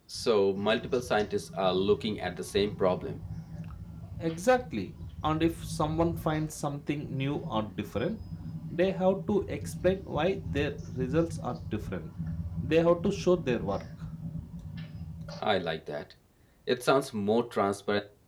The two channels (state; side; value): identical; both; correlation 1.00